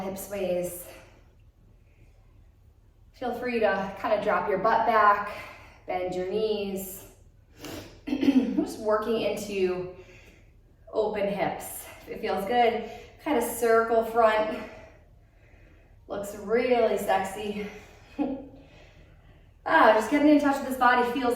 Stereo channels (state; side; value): identical; both; correlation 1.00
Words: sways. Feel free to kind of drop your butt back, bend your knees. Just working into open hips. If it feels good, kind of circle front. Looks really sexy. Just getting in touch with this body